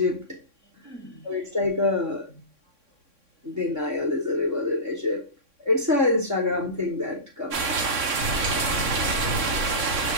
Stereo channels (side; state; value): left; late; 3.6 ms